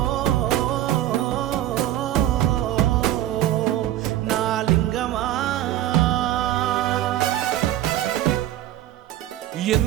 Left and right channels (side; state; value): left; quieter; 13.4 dB